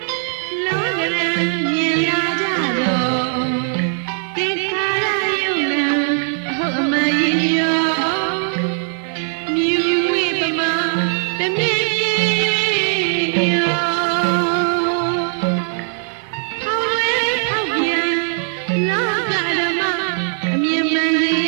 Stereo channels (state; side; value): silent; left; 59 dB below the other